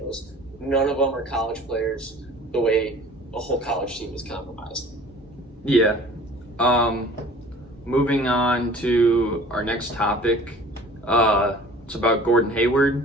None of them are college players the way a whole college team is compromised. Yeah. Moving on to our next topic. It's about Gordon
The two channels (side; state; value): both; normal; correlation 0.47